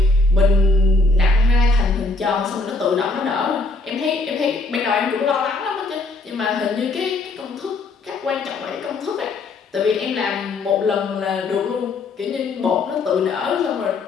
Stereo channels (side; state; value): right; quieter; 3.3 dB